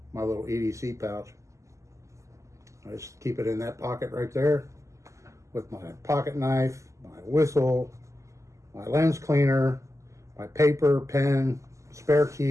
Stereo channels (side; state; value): left; late; 0.15 ms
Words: EDC pouch. I just keep it in that pocket right there with my pocket knife, my whistle, my lens cleaner, my paper, pen, spare